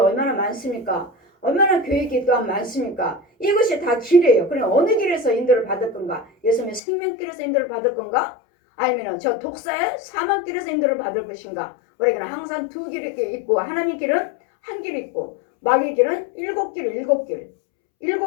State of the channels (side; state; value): right; drops out; at 6.8 s